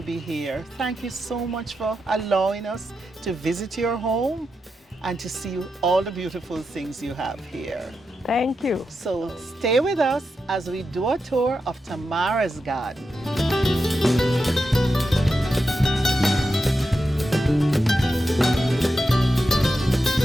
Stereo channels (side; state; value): both; normal; correlation 0.88